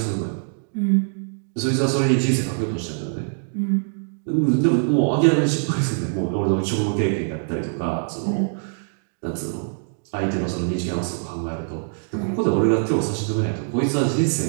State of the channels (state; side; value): silent; left; digital silence